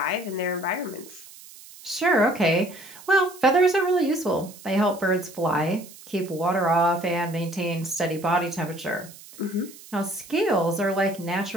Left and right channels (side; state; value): right; noise; hiss, 19 dB below the sound